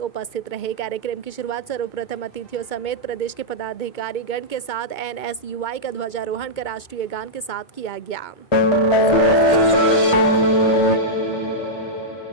उपस्थित रहे। कार्यक्रम की शुरुआत सर्वप्रथम अतिथियों समेत प्रदेश के पदाधिकारी गण के साथ NSUI का ध्वजारोहण कर राष्ट्रीय गान के साथ किया गया।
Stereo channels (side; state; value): right; late; 2.2 ms